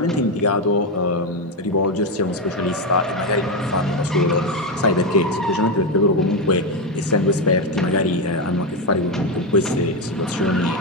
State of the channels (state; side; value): normal; both; correlation 0.09